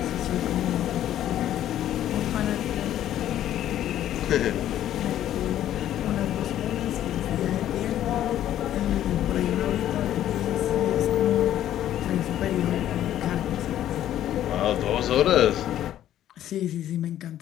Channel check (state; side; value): quieter; right; 11.9 dB